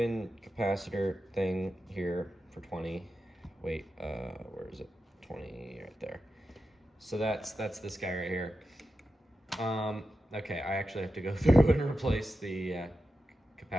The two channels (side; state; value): both; normal; correlation 0.90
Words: capacitor thing here for 20. Wait, where is it? 20 right there. So that's this guy right here. Okay, I actually have to go through and replace the